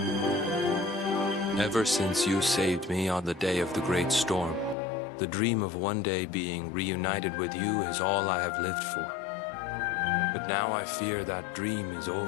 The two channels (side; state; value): right; drops out; at 4.8 s